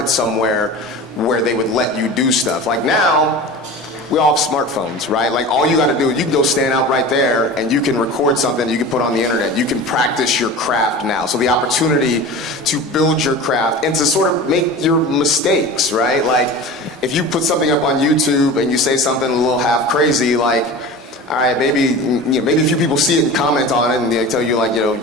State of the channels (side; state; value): both; normal; correlation 0.34